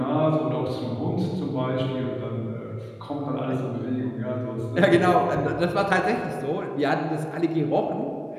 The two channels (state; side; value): identical; both; correlation 1.00